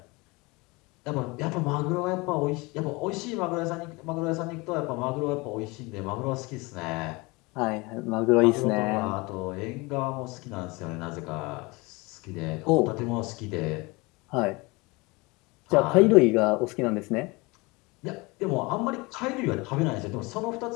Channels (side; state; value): right; quieter; 25.1 dB